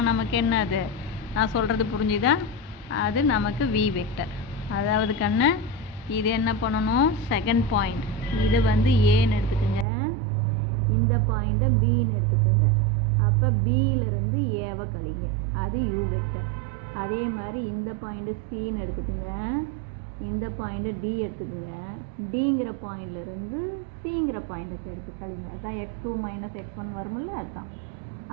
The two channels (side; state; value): left; drops out; at 9.9 s